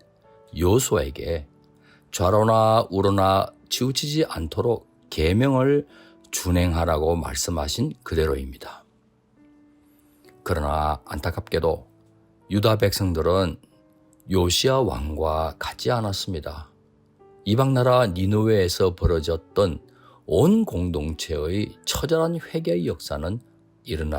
여호수아에게 좌로나 우로나 치우치지 않도록 계명을 준행하라고 말씀하신 그대로입니다. 그러나 안타깝게도 유다 백성들은 요시야 왕과 같지 않았습니다. 이방나라 니느웨에서 벌어졌던 온 공동체의 처절한 회개의 역사는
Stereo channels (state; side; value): identical; both; correlation 1.00